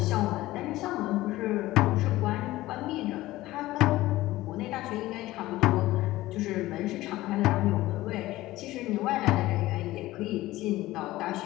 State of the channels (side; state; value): right; quieter; 17.1 dB